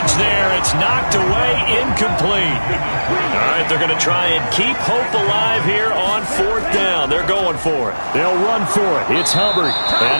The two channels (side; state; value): both; inverted; correlation -1.00